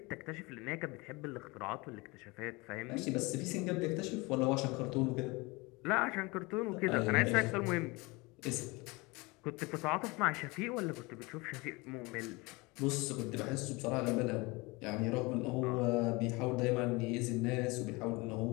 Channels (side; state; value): right; quieter; 25.0 dB